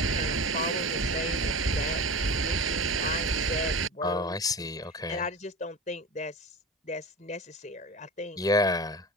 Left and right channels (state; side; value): normal; both; correlation 0.30